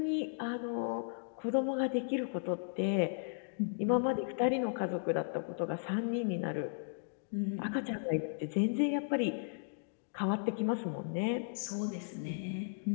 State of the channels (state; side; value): silent; right; digital silence